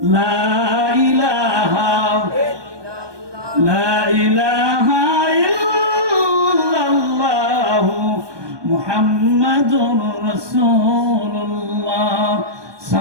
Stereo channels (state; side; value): late; left; 1.2 ms